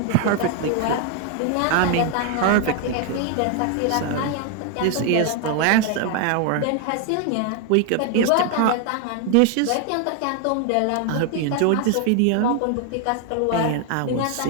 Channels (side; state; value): both; different; correlation 0.00